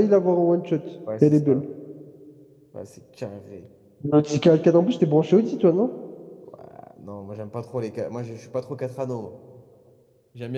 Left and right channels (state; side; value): identical; both; correlation 1.00